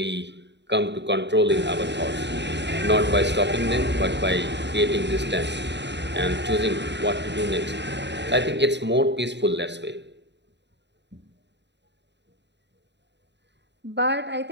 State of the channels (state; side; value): late; left; 0.51 ms